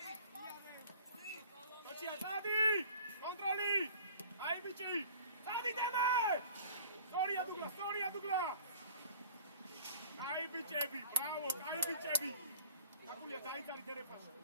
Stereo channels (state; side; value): inverted; both; correlation -0.48